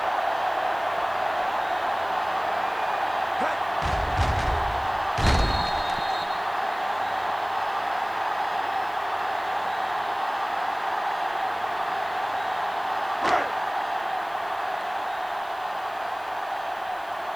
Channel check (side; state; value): right; noise; hiss, 25 dB below the sound